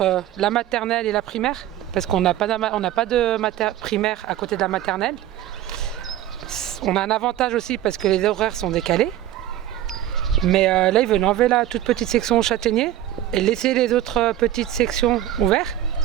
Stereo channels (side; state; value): left; quieter; 12.3 dB